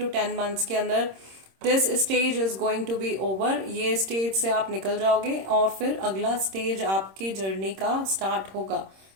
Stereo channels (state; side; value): late; left; 26 ms